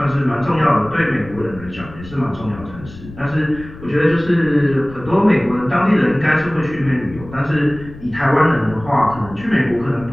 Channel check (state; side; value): noise; left; rumble, 16 dB below the sound